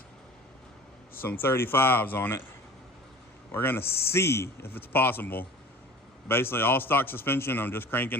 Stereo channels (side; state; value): both; normal; correlation 0.42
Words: some 35s on it. We're gonna see if it's possible. Basically all stock suspension, I'm just